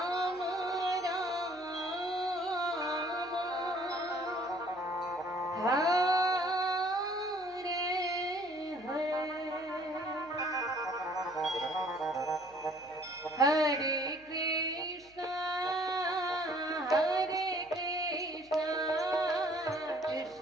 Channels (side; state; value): right; noise; hum, 29 dB below the sound